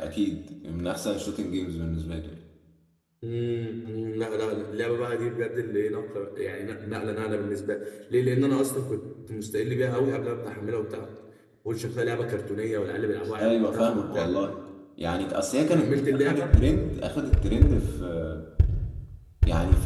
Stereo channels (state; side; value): identical; both; correlation 1.00